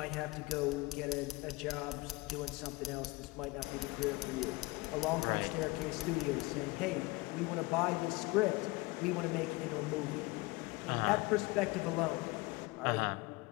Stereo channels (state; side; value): quieter; right; 22.3 dB